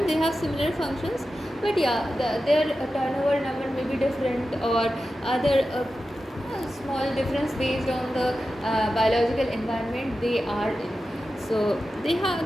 They have similar functions, but yeah, their turnover number may be different, or other small difference based on the biological environment they are in. So they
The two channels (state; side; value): normal; both; correlation 0.92